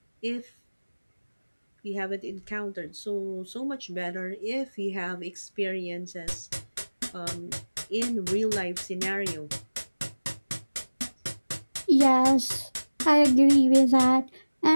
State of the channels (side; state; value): both; inverted; correlation -1.00